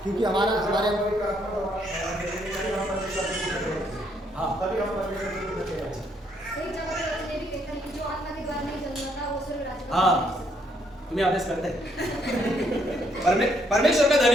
क्योंकि हमारे हाँ जो आत्मा के द्वारा नहीं जन्मा था वो स्वर्ग राज्य। हाँ, तुम्हें आदेश करते हैं। परमेश्वर का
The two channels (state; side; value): normal; both; correlation 0.71